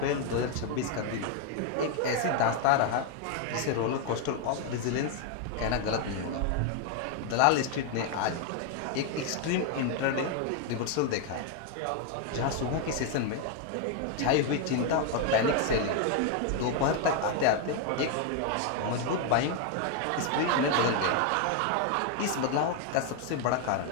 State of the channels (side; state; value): both; different; correlation 0.01